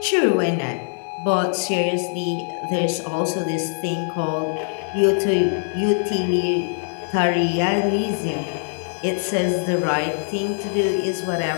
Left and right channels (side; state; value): right; silent; digital silence